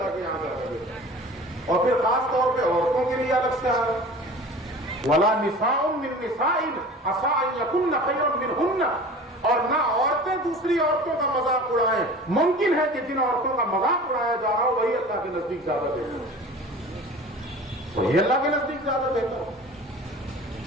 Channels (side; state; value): both; normal; correlation 0.40